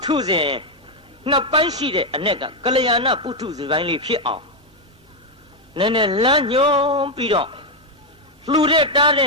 ထုဇဉ်နှစ်ပိုင်းရှိတဲ့အ내ကကလျာဏပုထုဇဉ်ပိုင်းလေးဖြစ်အောင်နည်းနည်းလမ်းညွှန်ပြီးတော့လှူတဲ့တားတဲ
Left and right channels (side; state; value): both; normal; correlation 0.03